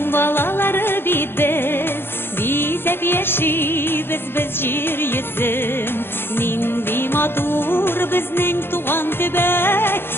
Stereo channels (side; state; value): right; late; 0.11 ms